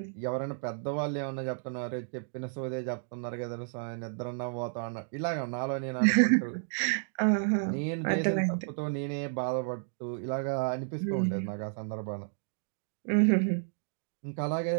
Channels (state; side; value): silent; left; digital silence